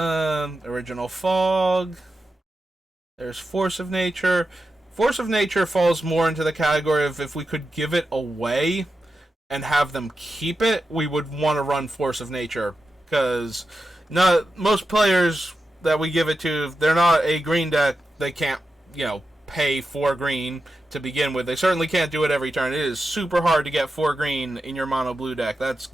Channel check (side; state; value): both; normal; correlation 0.90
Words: Fog. There's Force of Nature. Force of Nature falls more into the category of if we could give it away and have them keep it, we would want to run Force of Nature. Because most players that we give it to, if they're not a green deck, they can't pay 4 green to begin with. They certainly can't do it every turn. It is super hard to get 4 green in your mono blue deck. That's